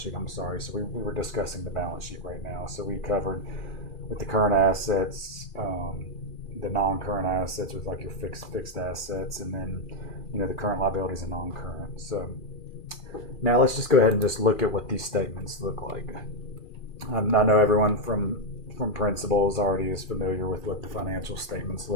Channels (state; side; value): late; right; 2.4 ms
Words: I'm sorry. So we were discussing the balance sheet right now. So we covered with the current assets, the non-current assets with like your fixed assets, and then, the current liabilities and non-current. So now let's just go ahead and just look at what these statements look like. I know everyone from principals already is familiar with what the financial statements